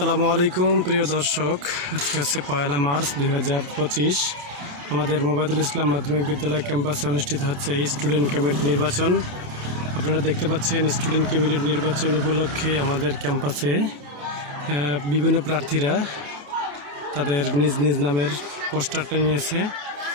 আলাইকুম প্রিয় দর্শক, আজকে হচ্ছে 1 মার্চ 2025। আমাদের মোবাইদুল ইসলাম মাধ্যমিক বিদ্যালয় ক্যাম্পাসে অনুষ্ঠিত হচ্ছে স্টুডেন্ট ক্যাবিনেট নির্বাচন। আপনারা দেখতে পাচ্ছেন স্টুডেন্ট ক্যাবিনেট নির্বাচন উপলক্ষে আমাদের ক্যাম্পাসে বিভিন্ন প্রার্থীরা তাদের নিজ নিজ নামের পোস্টারটা নিয়েছে।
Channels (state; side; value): late; left; 27 ms